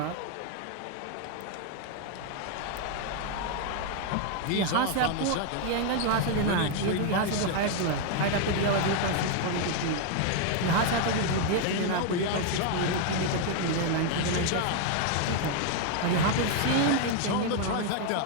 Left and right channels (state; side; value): different; both; correlation 0.00